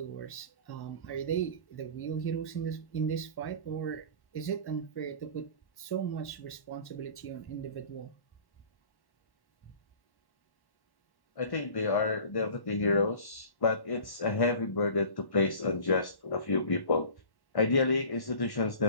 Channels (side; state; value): right; late; 1.1 ms